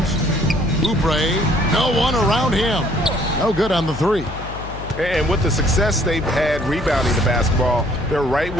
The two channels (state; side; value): noise; left; hum, 11 dB below the sound